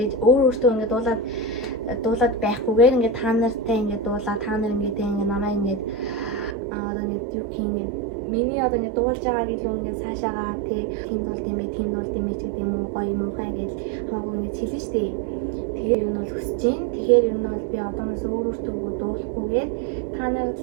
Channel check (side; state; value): left; drops out; at 6.6 s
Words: өөртөө ингээд дуулаад байхгүйгээр ингээд та нартай ингээд дуулаа та нар ингээд намайг ингээд одоо ингээд юу гэх юм миний одоо ингээд дуулж байгааг илүү ингээд цаашаагаа тийм дуулд юм бэ ч гэдэг юм уу гоё муухай гэж хамаагүй ингээд хэлнэ шүү дээ. Тэгэхээр юу нь бол хүсэж байна. Тэгэхээр юу нь бол би одооноос өөртөө дуулахгүйгээр та нар